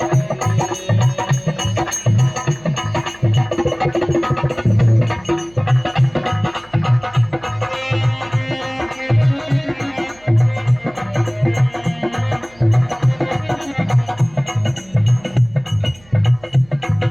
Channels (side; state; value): right; noise; hum, 27 dB below the sound